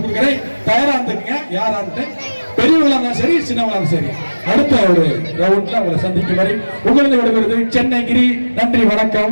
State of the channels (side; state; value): both; inverted; correlation -1.00